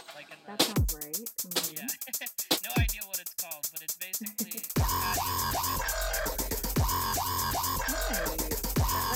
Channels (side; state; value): both; identical; correlation 1.00